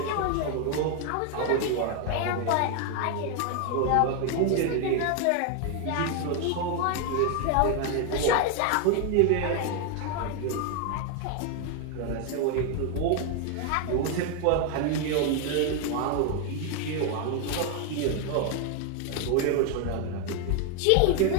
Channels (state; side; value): different; both; correlation 0.01